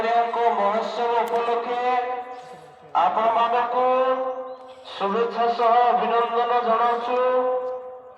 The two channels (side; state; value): both; identical; correlation 1.00